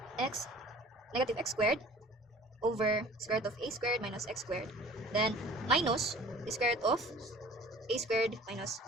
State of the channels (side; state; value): both; normal; correlation 0.47